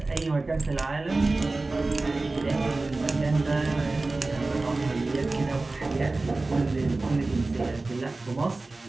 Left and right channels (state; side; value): quieter; left; 3.3 dB